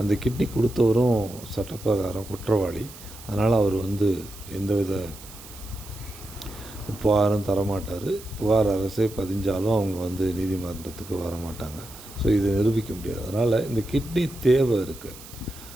கிட்னி கொடுத்தவரும் சட்டப்பிரகாரம் குற்றவாளி. அதனால் அவர் எந்தவித புகாரும் தரமாட்டார். புகார் அரசே பதிஞ்சாலும் அவங்க நீதிமன்றத்துக்கு வரமாட்டாங்க. ஸோ இதை நிரூபிக்க முடியாது. அதனால் இந்த கிட்னி தேவை இருக்குது.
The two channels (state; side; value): noise; right; hiss, 17 dB below the sound